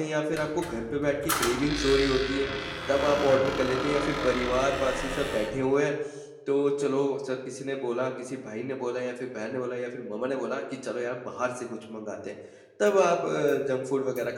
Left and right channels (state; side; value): identical; both; correlation 1.00